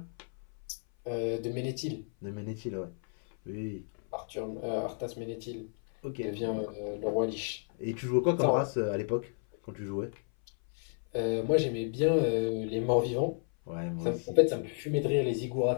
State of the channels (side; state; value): right; silent; 56 dB below the other